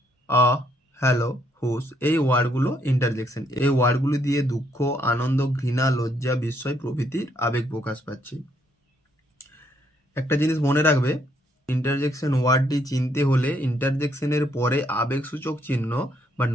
হ্যালো, হুস, এই ওয়ার্ডগুলো ইন্টারজেকশন। এই ওয়ার্ডগুলি দিয়ে দুঃখ, আনন্দ, ঘৃণা, লজ্জা, বিস্ময় প্রভৃতির আবেগ প্রকাশ পাচ্ছে। একটা জিনিস মনে রাখবে, ইন্টারজেকশন ওয়ার্ডটি চিনতে হলে ইন্টারজেকশনের পরে আবেগসূচক চিহ্ন বা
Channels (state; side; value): normal; both; correlation 0.71